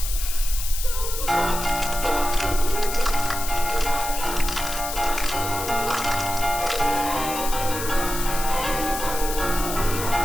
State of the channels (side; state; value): left; noise; hiss, 6 dB below the sound